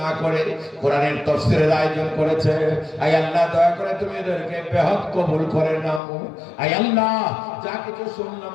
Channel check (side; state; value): right; drops out; at 6.0 s